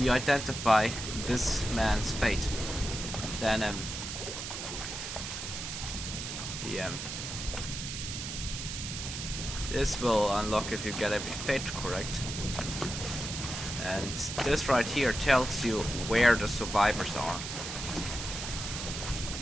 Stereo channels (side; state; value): right; noise; hiss, 6 dB below the sound